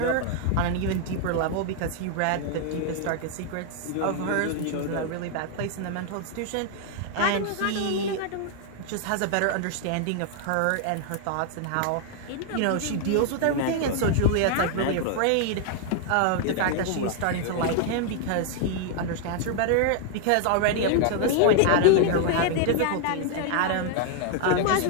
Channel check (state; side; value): different; both; correlation 0.00